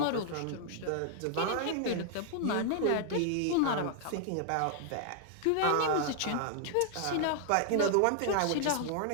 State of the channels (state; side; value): different; both; correlation 0.00